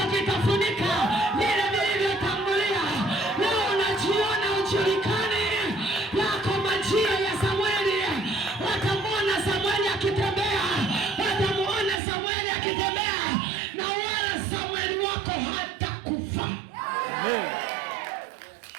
kitafunika vile vilivyotangulia. Leo unajiona ujulikane, yako majira ya Samueli. Watamuona Samueli akitembea, watamuona Samueli akitembea, na wala Samueli wako hatakufa.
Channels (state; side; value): drops out; left; at 12.0 s